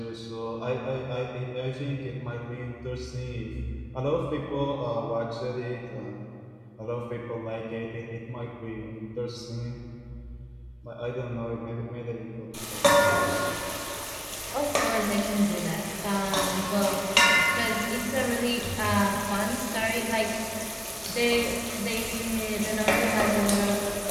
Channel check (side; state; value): both; identical; correlation 1.00